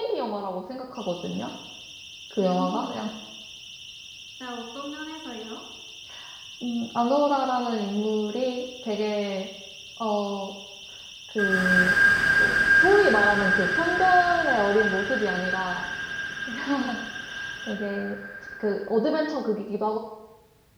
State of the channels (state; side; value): identical; both; correlation 1.00